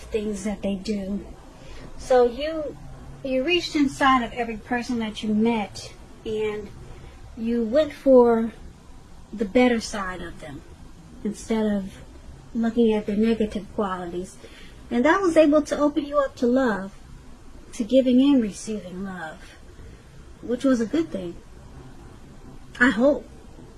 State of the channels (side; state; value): both; identical; correlation 1.00